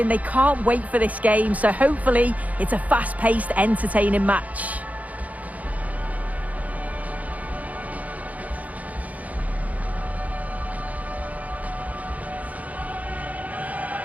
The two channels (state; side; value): late; left; 0.073 ms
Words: They can't wait for this game, so hopefully it's a fast-paced, entertaining match.